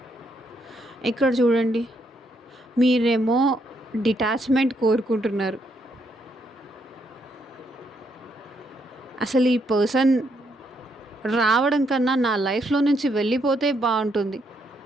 ఇక్కడ చూడండి. మీరేమో డిటాచ్‌మెంట్ కోరుకుంటున్నారు. అసలు ఈ పర్సన్ రావడం కన్నా నా లైఫ్‌లో నుంచి వెళ్ళిపోతే బావుంటుంది.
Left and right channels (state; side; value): normal; both; correlation 0.75